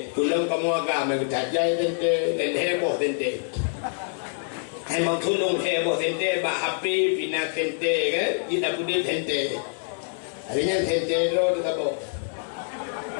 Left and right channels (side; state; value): right; silent; digital silence